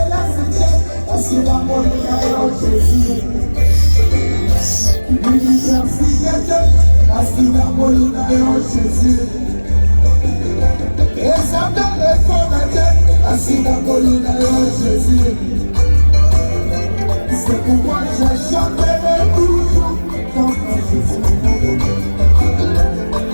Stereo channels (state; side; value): inverted; both; correlation -1.00